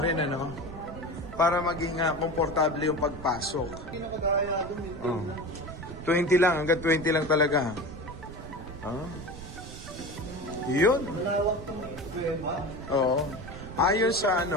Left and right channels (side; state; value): right; noise; rumble, 13 dB below the sound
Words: rin, para maging komportable yung pagpasok. Oh. 20 lang, hanggang 20 lang talaga. Oh. Yun. Oo. Ayon sa